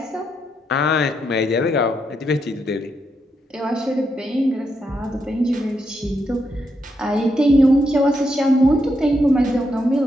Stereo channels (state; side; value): normal; both; correlation 0.81